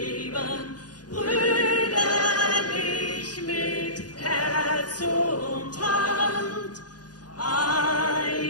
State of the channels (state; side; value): late; right; 0.69 ms